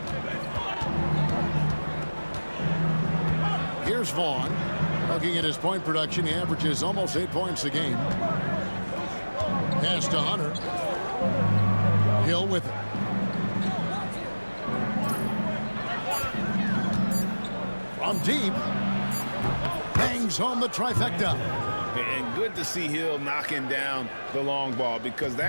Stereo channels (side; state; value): both; inverted; correlation -1.00